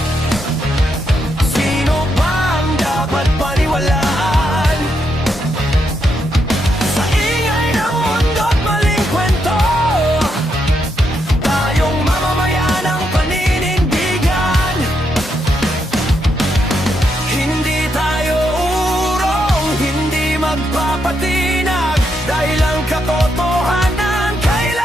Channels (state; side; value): normal; both; correlation 0.80